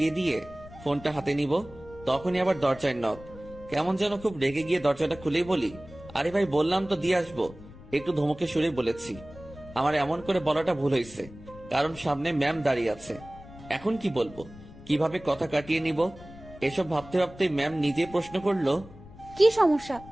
দিয়ে ফোনটা হাতে নিব। তখনই আবার দরজায় নক। কেমন যেন খুব রেগে গিয়ে দরজাটা খুলেই বলি, আরে ভাই বললাম তো দিয়ে আসবো। একটু ধমকে সুরে বলেছি। আমার এমন করে বলাটা ভুল হয়েছে, কারণ সামনে ম্যাম দাঁড়িয়ে আছে। এখন কি বলবো, কিভাবে কথা কাটিয়ে নিব, এসব ভাবতে ভাবতে ম্যাম নিজে প্রশ্ন করলো, কি সমস্যা,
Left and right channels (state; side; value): noise; left; rumble, 18 dB below the sound